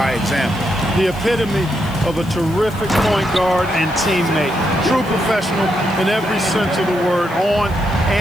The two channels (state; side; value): noise; left; hiss, 22 dB below the sound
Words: example. The epitome of a terrific point guard and teammate. True professional in every sense of the word, on